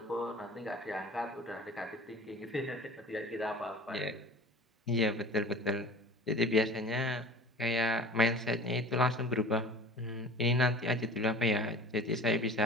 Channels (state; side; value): normal; both; correlation 0.41